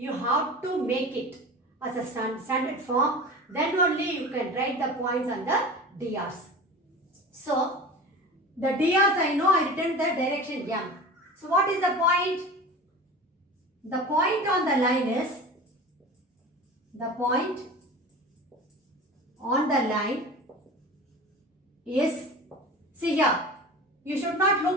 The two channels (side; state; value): both; normal; correlation 0.35